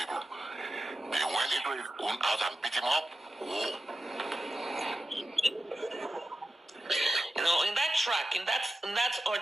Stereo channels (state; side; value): normal; both; correlation 0.93